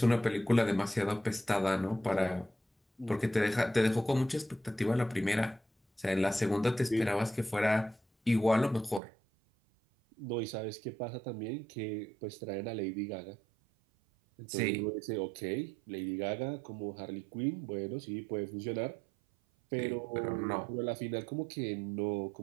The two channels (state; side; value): drops out; left; at 9.0 s